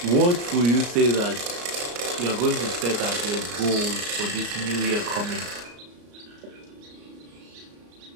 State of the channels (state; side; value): late; left; 34 ms